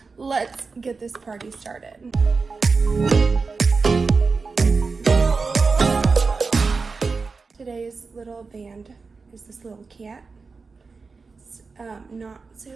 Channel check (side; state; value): left; quieter; 4.5 dB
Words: Let's get this party started. Today's little band is this little cat. It's not